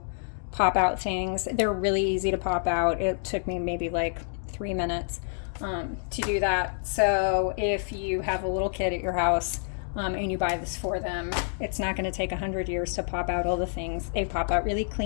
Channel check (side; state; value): right; silent; digital silence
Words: pop out things. They're really easy to pop out. It took me maybe like 3 minutes to do that. So if you have a little kid at your house and you buy this for them, it's not going to take 100 years to pop out all the things. They pop out really